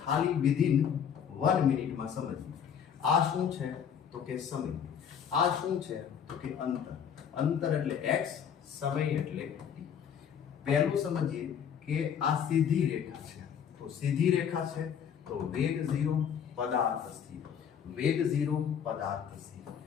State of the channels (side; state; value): right; quieter; 8.0 dB